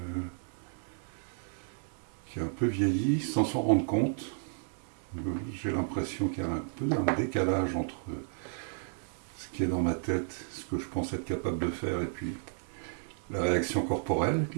qui est un peu vieillie sans s'en rendre compte. J'ai l'impression qu'il y a un peu un décalage entre ce qui est dans ma tête, ce que je pense être capable de faire, et puis la réaction corporelle, qui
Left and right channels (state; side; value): silent; left; digital silence